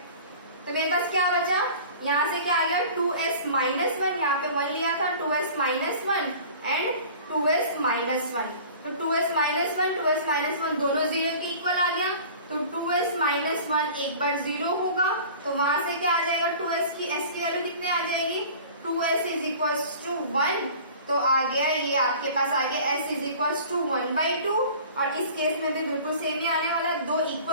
तो मेरे पास क्या बचा, यहाँ से क्या आ गया, 2s -1, यहाँ पे 1 लिया था, 2s -1 एंड 2s -1। तो 2s -1 दोनों 0 के इक्वल आ गया, तो 2s -1 एक बार 0 होगा, तो वहां से क्या आ जाएगा, 2s की s की वैल्यू कितने आ जाएगी, 2s इज इक्वल्स टू 1। तो आ गया, ये आपके पास आ गया s इज इक्वल्स टू 1/2। और इस केस में भी बिल्कुल सेम ही आने वाला है, 2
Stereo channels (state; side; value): inverted; both; correlation -0.43